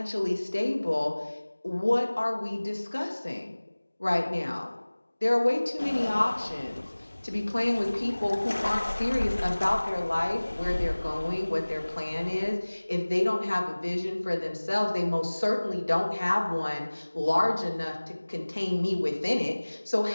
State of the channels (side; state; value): both; inverted; correlation -1.00